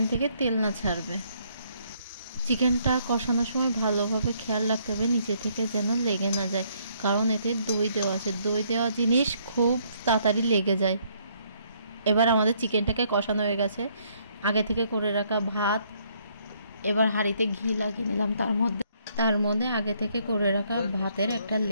থেকে তেল না ছাড়বে। চিকেনটা কষানোর সময় ভালোভাবে খেয়াল রাখতে হবে নিচে থেকে যেন লেগে না যায়, কারণ এতে দই দেওয়া আছে। দই দেওয়া জিনিস খুব তাড়াতাড়ি লেগে যায়। এবার আমাদের চিকেনটাকে কষানো হয়ে গেছে। আগে থেকে করে রাখা ভাত, এবার হাঁড়িতে ঘি লাগিয়ে নিলাম। তার মধ্যে আগে থেকে করে রাখা ভাতের একটা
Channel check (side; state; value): both; inverted; correlation -0.68